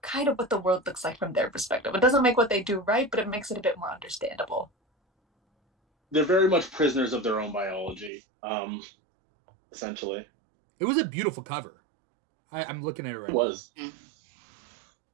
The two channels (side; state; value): left; drops out; at 8.1 s